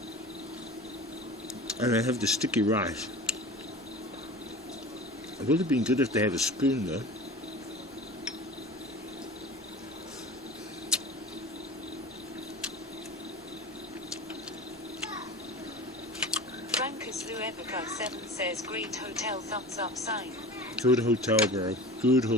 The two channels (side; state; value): both; normal; correlation 0.36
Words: And I have the sticky rice. It would have been good if they had a spoon though. Brankus Luebica 7 says, great hotel, thumbs up sign. Good hotel, bro. Good